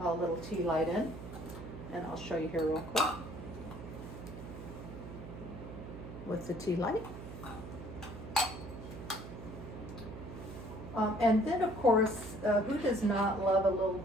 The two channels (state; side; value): noise; right; hum, 11 dB below the sound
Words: a little tea light in. And I'll show you here real quick with the tea light. And then, of course, who does not love a little